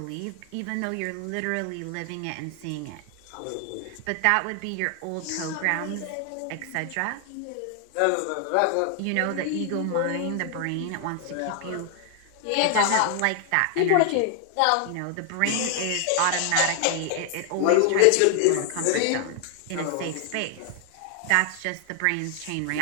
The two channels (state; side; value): different; both; correlation 0.00